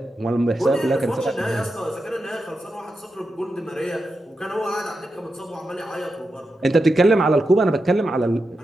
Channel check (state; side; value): normal; both; correlation 0.88